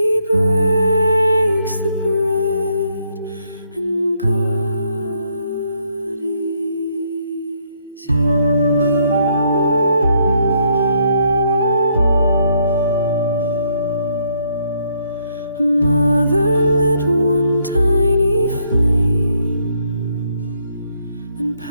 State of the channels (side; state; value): both; inverted; correlation -0.72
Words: breaks the bread, and God is here. A mother lit one tiny flame, then